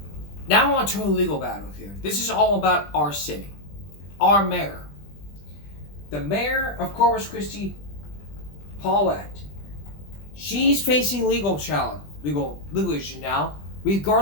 Now on to a legal battle here. This is all about our city. Our mayor. The mayor of Corpus Christi, Paulette. She's facing legal issue now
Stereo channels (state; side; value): late; right; 20 ms